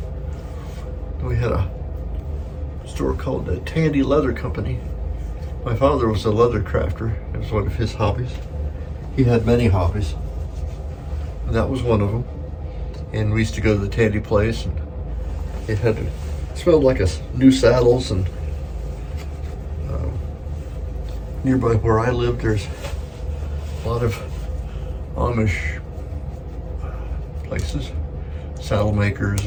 we had a store called the Tandy Leather Company. My father was a leather crafter. It was one of his hobbies. He had many hobbies, and that was one of them. And we used to go to the Tandy place, and it smelled like new saddles. And nearby where I lived, there's a lot of Amish places, saddle makers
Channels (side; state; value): both; identical; correlation 1.00